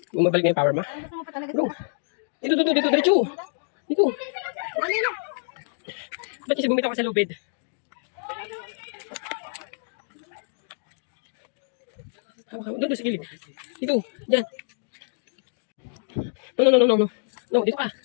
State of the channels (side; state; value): right; silent; digital silence